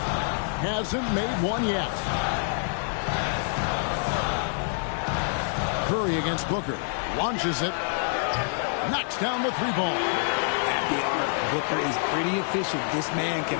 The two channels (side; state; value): right; silent; 58 dB below the other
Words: Hasn't made one yet. Curry against Booker. Launches it. Knocks down the 3-ball. At the arc, Booker is pretty efficient. This man can